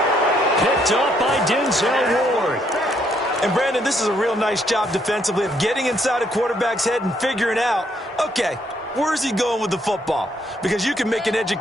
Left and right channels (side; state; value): both; normal; correlation 0.71